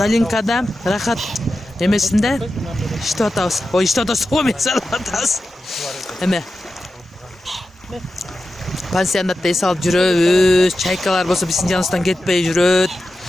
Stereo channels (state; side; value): normal; both; correlation 0.92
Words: Rahat emesinde işte atağız. O işte atağız. O mesela atağız. Eme. Pansiyonatda es alып жүрөбүз. Çaykalar болсо биздин жаныбыздан кетпей жүрөт.